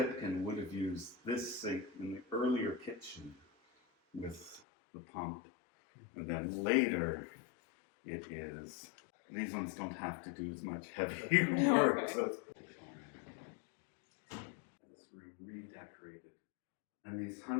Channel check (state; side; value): drops out; right; at 4.6 s